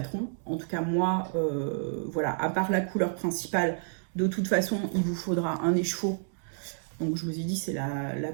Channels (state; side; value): silent; left; digital silence